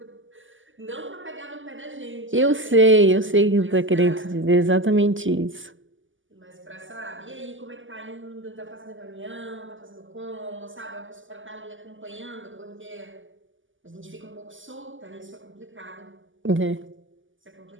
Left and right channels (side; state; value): left; late; 0.57 ms